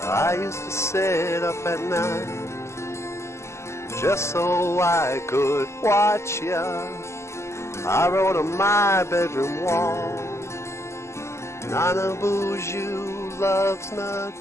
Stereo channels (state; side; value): late; right; 0.13 ms